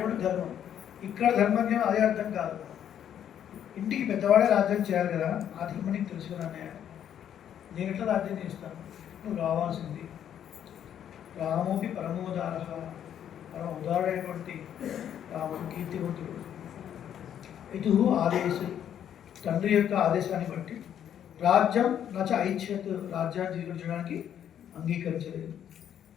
ధర్మం. ఇక్కడ ధర్మజ్ఞానం అదే అర్థం కాదు. ఇంటికి పెద్దవాడే రాజ్యం చేయాలి కదా, ఆ ధర్మం నీకు తెలుసుకున్నా అన్నయ్య. నేను ఎట్లా రాజ్యం చేస్తాను? నువ్వు రావాల్సింది. రామోపి పరమోదార, పరమ ఉదారుడైనటువంటి రాముడు కీర్తివంతుడు. ఇటు ఆదేశం, తండ్రి యొక్క ఆదేశాన్ని బట్టి రాజ్యం నచ ఐచ్ఛత్, రాజ్యాన్ని స్వీకరించడానికి అంగీకరించలేదు.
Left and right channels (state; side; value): quieter; right; 9.7 dB